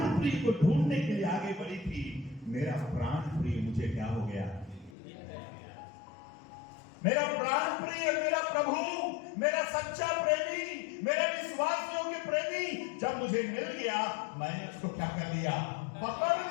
प्रिय को ढूंढने के लिए आगे बढ़ी थी। मेरा प्राण प्रिय मुझे क्या हो गया? मेरा प्राण प्रिय, मेरा प्रभु, मेरा सच्चा प्रेमी, मेरे विश्वास योग्य प्रेमी जब मुझे मिल गया, मैंने उसको क्या कर लिया? पकड़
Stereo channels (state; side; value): drops out; right; at 5.0 s